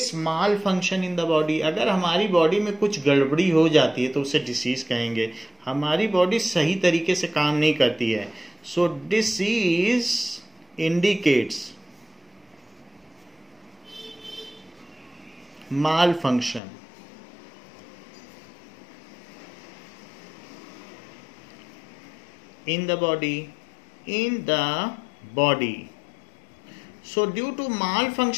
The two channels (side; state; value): right; drops out; at 16.6 s